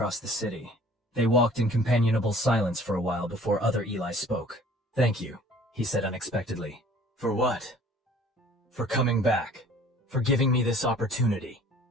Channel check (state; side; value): normal; both; correlation 0.51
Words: the city. They walked in companionable silence for a while before Other Eli spoke. Thank you, he said unexpectedly. For what? For coming back. For giving me this opportunity.